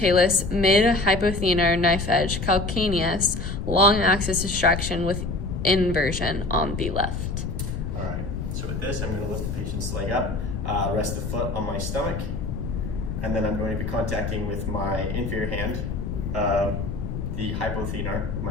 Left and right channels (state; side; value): noise; left; rumble, 4 dB below the sound